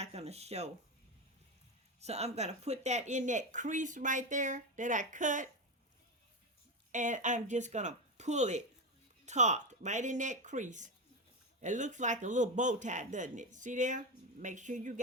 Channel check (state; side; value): normal; both; correlation 0.15